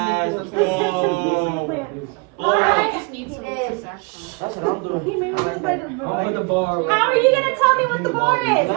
The Simpsons nuclear plant. Alright. just needs some That's what I'm doing. He made me like a I'll put the bar. How are you gonna tell me what the bar is? How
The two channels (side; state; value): left; quieter; 32.1 dB